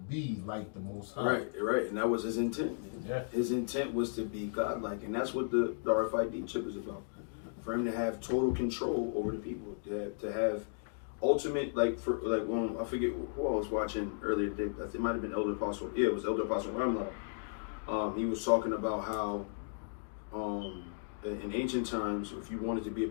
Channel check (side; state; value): right; silent; digital silence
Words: be like the Most High." Right. And that was his intent. Yeah. His intent was to be godlike, and that's what the RFID chip is about. For him to have total control over the people, to have ultimate, I forget who I was watching earlier today. It might have been Elder Apostle. Yeah, it was Elder Apostle Ramla. He was talking about how in ancient times, if you wanted to be a